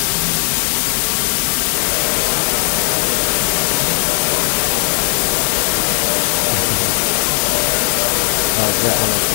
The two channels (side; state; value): right; silent; 65 dB below the other